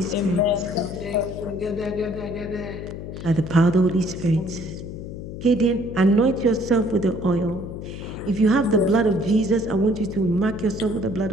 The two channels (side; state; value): left; noise; hum, 9 dB below the sound